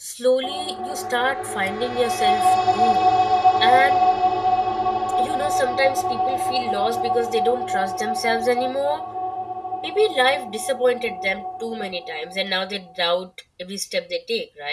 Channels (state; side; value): identical; both; correlation 1.00